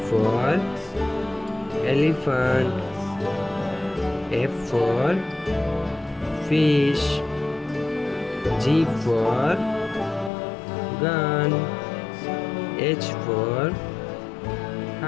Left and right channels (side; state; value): right; drops out; at 10.3 s